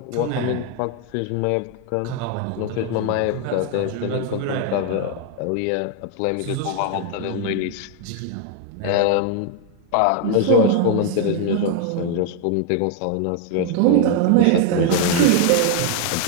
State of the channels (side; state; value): both; different; correlation 0.00